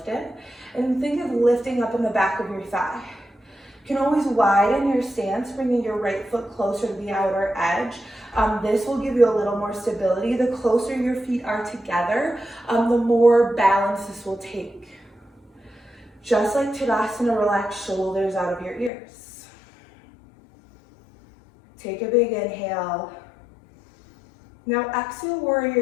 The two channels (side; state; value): right; drops out; at 18.9 s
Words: And think of lifting up in the back of your thigh. You can always widen your stance, bringing your right foot closer to the outer edge. This will give you a little more stability. The closer your feet are together, the more balance this will take. Just like Tadasana, relax shoulders out of your ears. Take a big inhale. Now exhale,